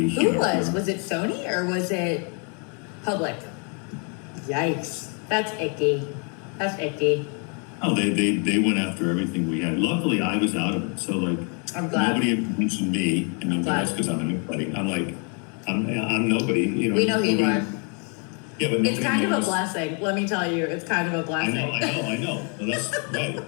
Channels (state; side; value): quieter; right; 37.5 dB